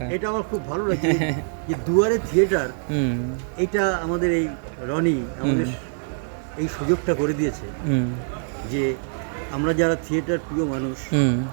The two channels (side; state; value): left; silent; 63 dB below the other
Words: এটা আমার খুব ভালো লাগছে যে দুয়ারে থিয়েটার, এটা আমাদের এই রনি আমাদের এই সুযোগটা করে দিয়েছে যে আমরা যারা থিয়েটার প্রিয় মানুষ